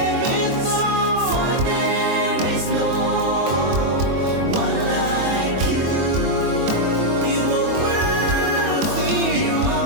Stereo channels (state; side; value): late; left; 23 ms